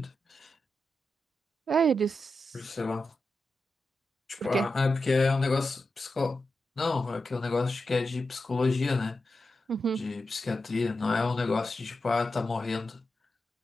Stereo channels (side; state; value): both; normal; correlation 0.89